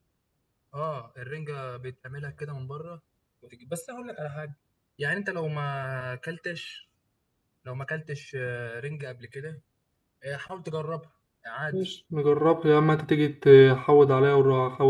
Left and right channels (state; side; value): identical; both; correlation 1.00